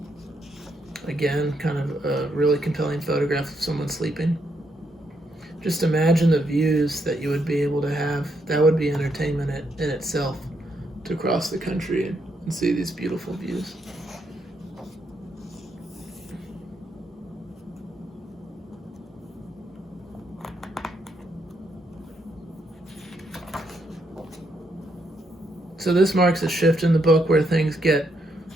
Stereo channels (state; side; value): normal; both; correlation 0.78